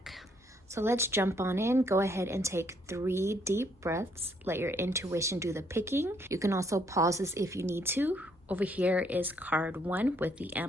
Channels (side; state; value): both; normal; correlation 0.69